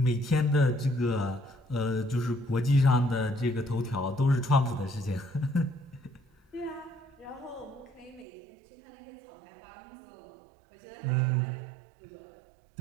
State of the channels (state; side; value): drops out; left; at 8.2 s